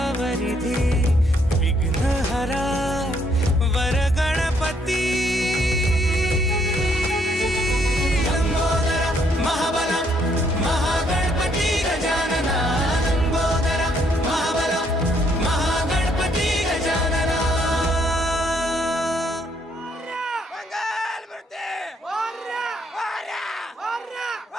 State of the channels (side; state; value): both; normal; correlation 0.70